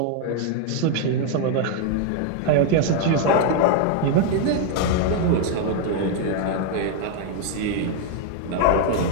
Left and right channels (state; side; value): different; both; correlation 0.00